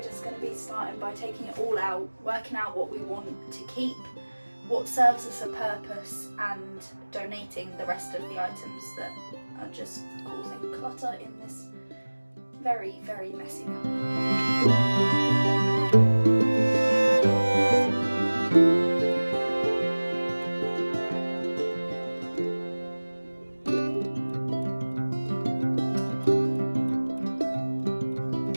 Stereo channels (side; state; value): both; inverted; correlation -1.00